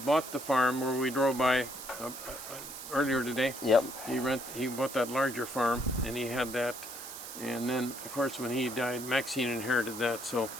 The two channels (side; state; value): right; noise; hiss, 10 dB below the sound